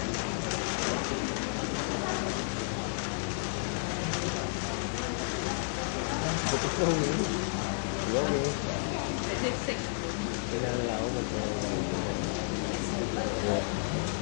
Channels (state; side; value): silent; right; digital silence